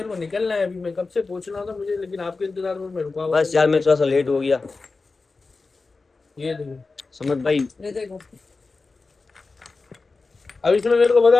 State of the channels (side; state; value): right; quieter; 3.9 dB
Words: को निकलना है अभी, मैं कब से पूछना था मुझे, लेकिन आपके इंतजार में मैं रुका हुआ बस था। यार मैं थोड़ा सा लेट हो गया ये देखो, समझ भाई। ये देखो, अब इसमें मेरे को